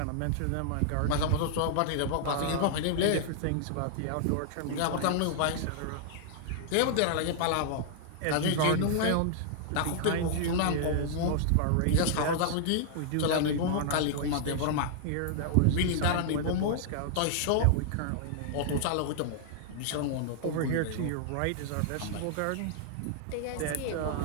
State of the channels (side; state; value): both; different; correlation -0.01